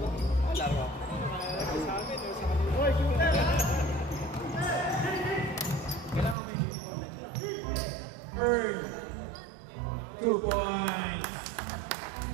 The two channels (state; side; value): drops out; left; at 6.4 s